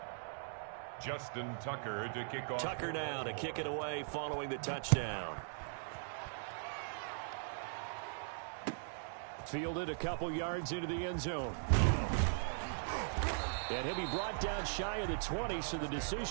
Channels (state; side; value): silent; left; digital silence